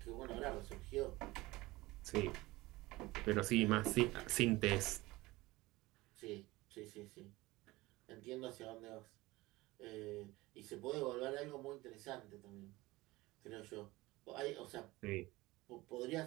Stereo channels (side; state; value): left; quieter; 20.2 dB